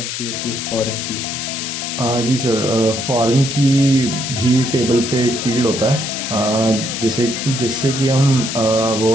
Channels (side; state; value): left; noise; hiss, 5 dB below the sound